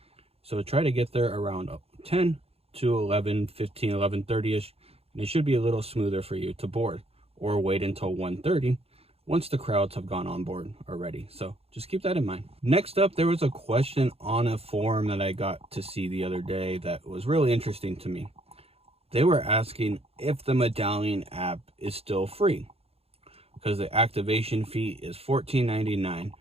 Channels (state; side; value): late; left; 0.29 ms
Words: So try to get there around 10 to 11:15, 11:30-ish. And it should be a little smoother for you to board, or wait until 1:30 once the crowds have gone on board already. So just keep that in mind. Next up, there was a question on a forum that I got to see the other day that was really interesting to me. They were asking if the Medallion app is still free, because the activation fee is $14.99